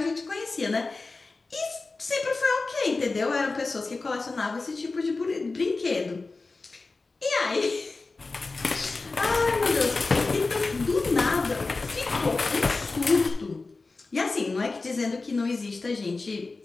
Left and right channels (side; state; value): right; quieter; 3.7 dB